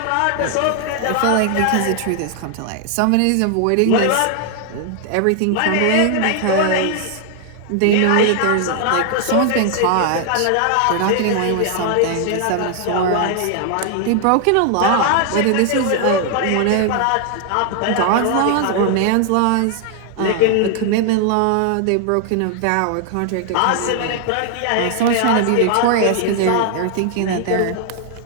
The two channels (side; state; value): both; different; correlation 0.00